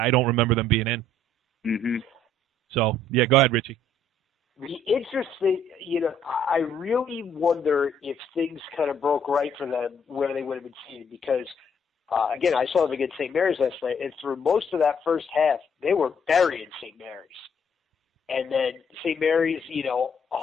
don't remember them being in. Mm-hmm. So yeah, go ahead, Richie. The interesting, I really wonder if things kind of broke right for them where they would have been seated because. Again, I saw them against St. Mary's last night, and through most of that first half, they were burying St. Mary's. And then St. Mary's,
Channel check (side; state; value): both; normal; correlation 0.65